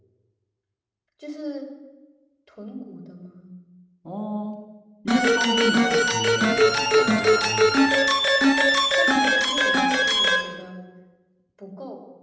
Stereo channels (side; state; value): both; identical; correlation 1.00